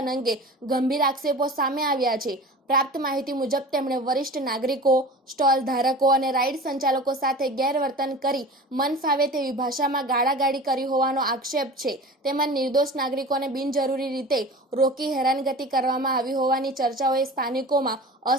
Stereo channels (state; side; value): normal; both; correlation 0.37